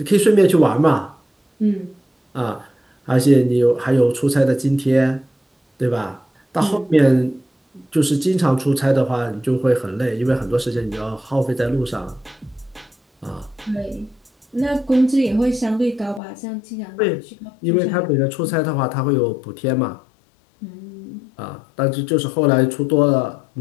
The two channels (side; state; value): right; drops out; at 16.2 s